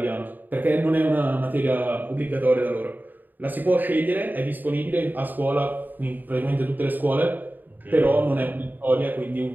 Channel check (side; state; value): left; late; 0.088 ms